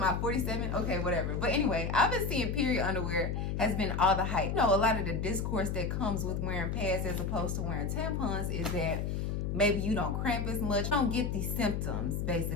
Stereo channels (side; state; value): left; noise; hum, 1 dB below the sound